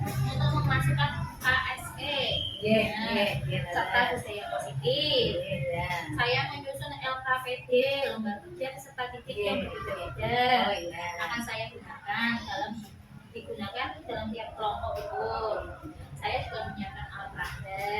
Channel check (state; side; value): identical; both; correlation 1.00